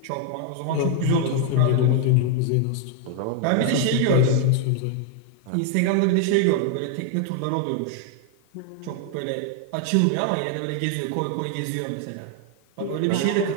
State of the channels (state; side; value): different; both; correlation 0.00